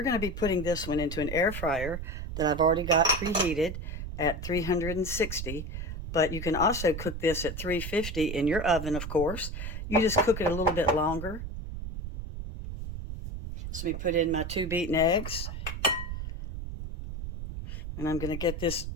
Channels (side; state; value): right; noise; rumble, 7 dB below the sound